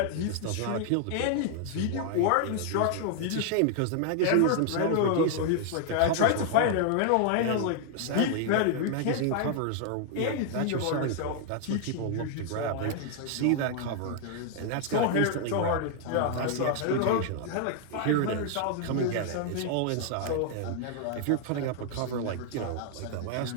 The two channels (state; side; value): different; both; correlation 0.00